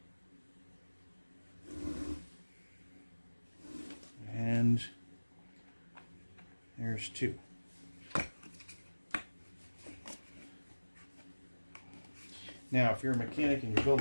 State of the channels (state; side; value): inverted; both; correlation -1.00